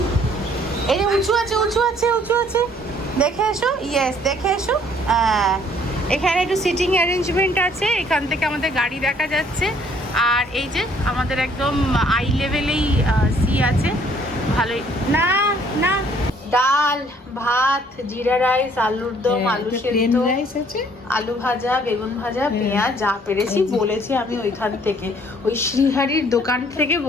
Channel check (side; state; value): both; normal; correlation 0.61